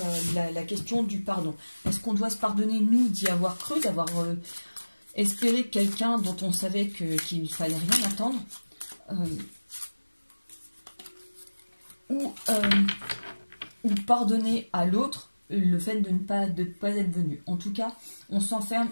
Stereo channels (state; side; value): inverted; both; correlation -1.00